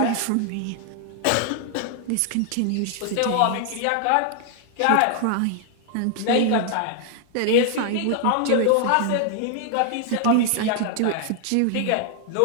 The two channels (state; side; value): different; both; correlation 0.00